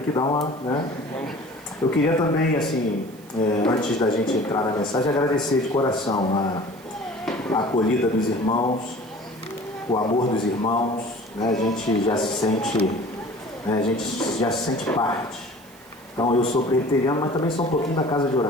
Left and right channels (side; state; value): right; noise; hiss, 25 dB below the sound